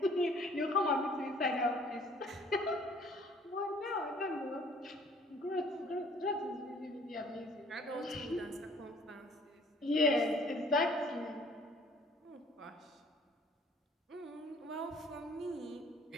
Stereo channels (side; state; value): both; normal; correlation 0.57